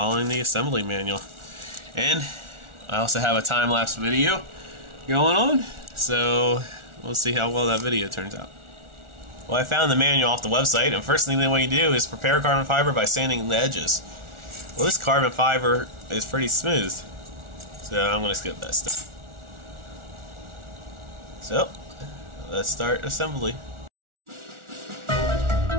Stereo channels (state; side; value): late; left; 1.4 ms